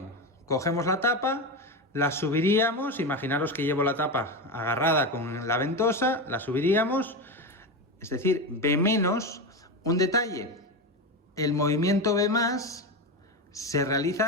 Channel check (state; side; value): normal; both; correlation 0.17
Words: Cogemos la tapa, la subiríamos, imaginaros que llevo la tapa agarrada con la ventosa, la subiríamos, es decir, B menos. Un detalle, el movimiento B más se